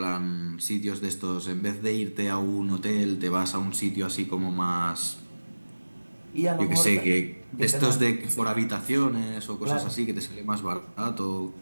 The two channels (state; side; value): inverted; both; correlation -1.00